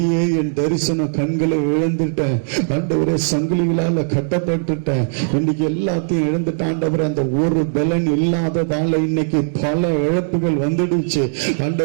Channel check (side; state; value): left; silent; 67 dB below the other